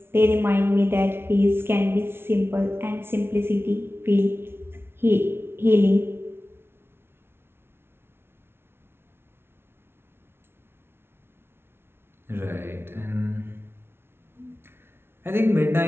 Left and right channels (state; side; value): late; left; 0.12 ms